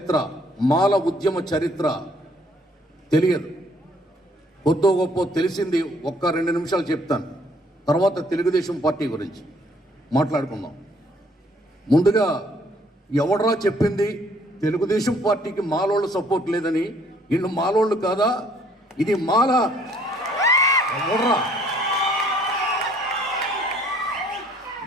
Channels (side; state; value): both; normal; correlation 0.62